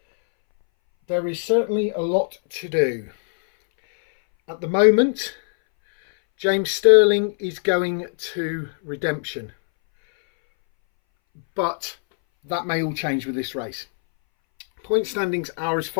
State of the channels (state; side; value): silent; right; 62 dB below the other